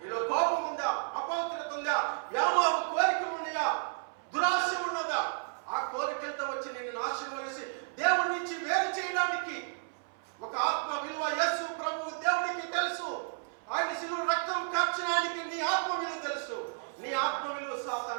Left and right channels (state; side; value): silent; left; 56 dB below the other